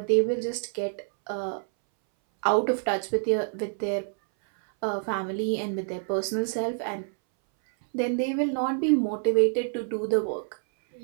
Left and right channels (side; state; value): left; silent; 60 dB below the other